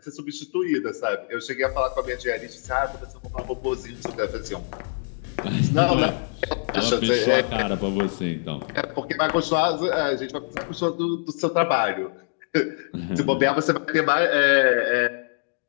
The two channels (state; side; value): silent; right; digital silence